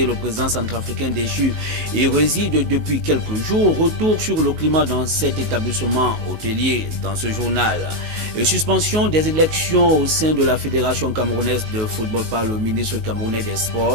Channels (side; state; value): left; late; 19 ms